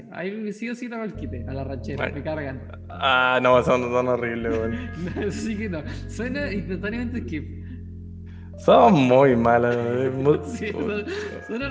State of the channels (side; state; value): both; identical; correlation 1.00